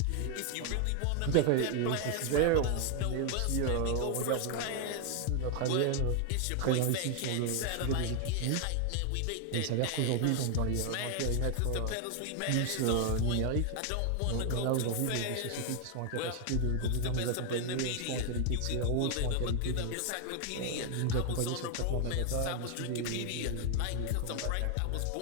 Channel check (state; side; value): different; both; correlation 0.00